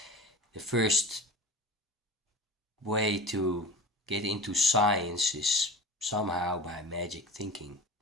the first way to get into science is somehow by magic thinking,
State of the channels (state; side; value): normal; both; correlation 0.33